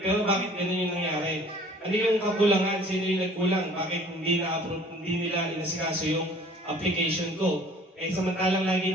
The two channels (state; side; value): normal; both; correlation 0.51